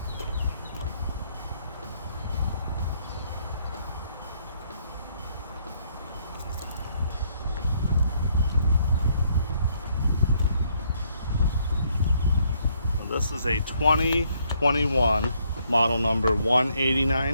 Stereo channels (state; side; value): inverted; both; correlation -0.70